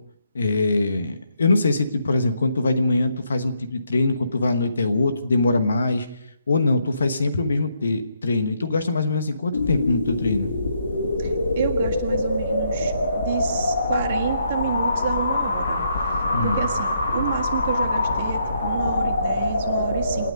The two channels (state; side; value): inverted; both; correlation -0.75